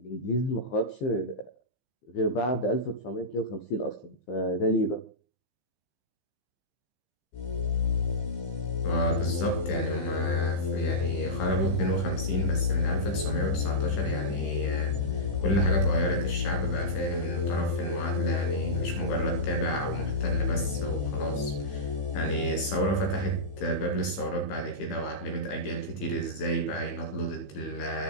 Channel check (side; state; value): right; late; 15 ms